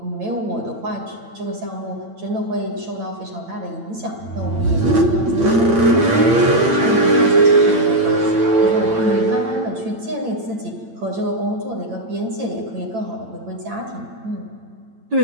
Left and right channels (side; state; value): left; late; 8.9 ms